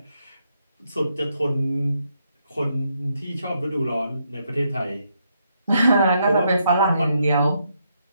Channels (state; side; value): inverted; both; correlation -0.77